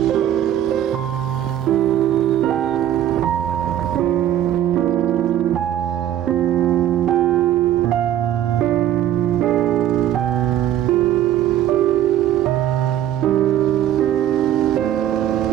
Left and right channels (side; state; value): left; quieter; 11.6 dB